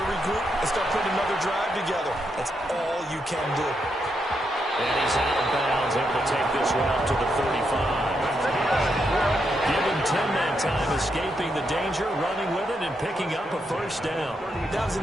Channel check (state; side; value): normal; both; correlation 0.81